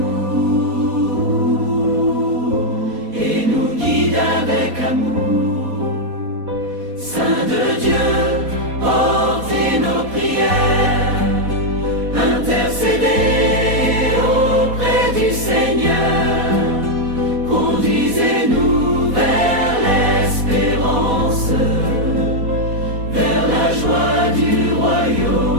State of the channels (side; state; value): left; late; 4.2 ms